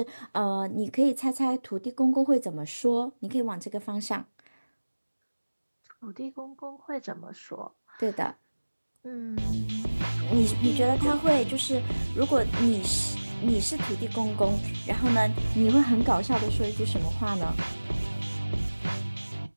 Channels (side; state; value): both; inverted; correlation -1.00